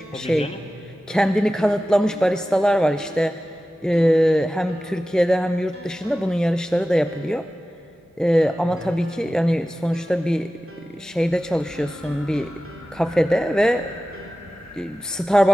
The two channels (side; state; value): both; normal; correlation 0.95